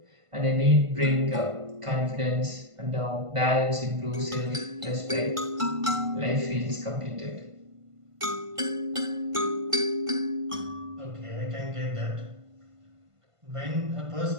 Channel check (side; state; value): left; late; 1.5 ms